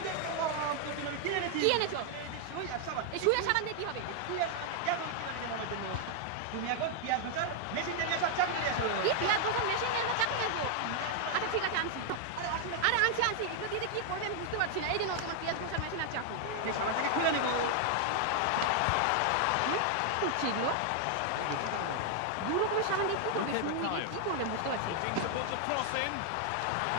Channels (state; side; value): different; both; correlation 0.00